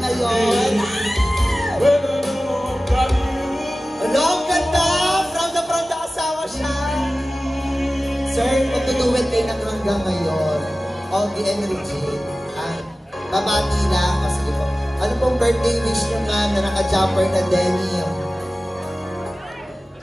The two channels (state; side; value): normal; both; correlation 0.96